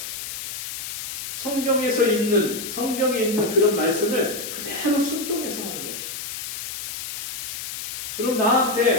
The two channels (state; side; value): noise; left; hiss, 6 dB below the sound